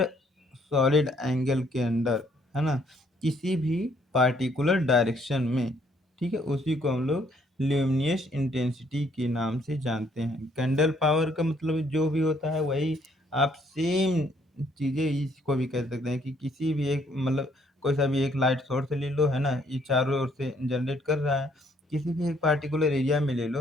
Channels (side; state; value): both; normal; correlation 0.67